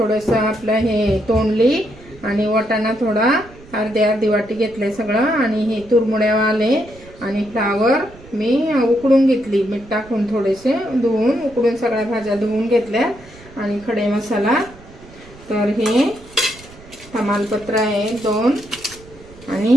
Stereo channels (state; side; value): noise; right; rumble, 22 dB below the sound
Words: आपलं हे तोंडली, आणि वाटाणा थोडा अर्धी वाटी घेतले सगळं, आणि हे तुरमुड्यावाले आणि फ्लावर मी उकडून घेतली, मीठ टाकून थोडेसे धुवून उकडून सगळ्या भाज्या धुवून घेतल्या, आणि खडे मसाला तर हे तमालपत्र आहे 2,